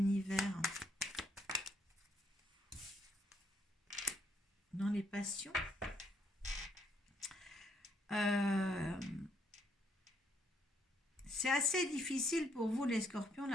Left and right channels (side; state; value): both; normal; correlation 0.71